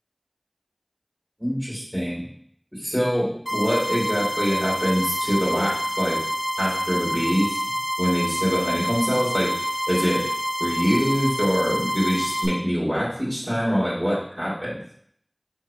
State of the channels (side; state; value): both; identical; correlation 1.00